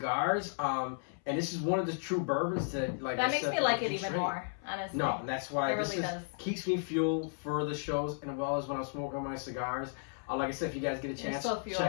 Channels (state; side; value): silent; right; 55 dB below the other